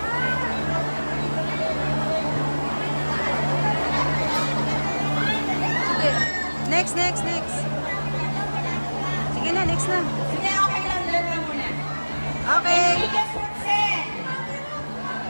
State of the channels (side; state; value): both; inverted; correlation -1.00